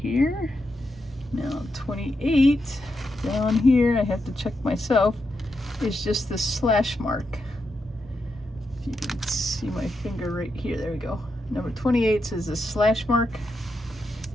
Now 28, down here, I have to check myself, is just the slash mark. If you can see my finger right here, there we go. Number 28 is a slash mark,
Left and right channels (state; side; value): normal; both; correlation 0.84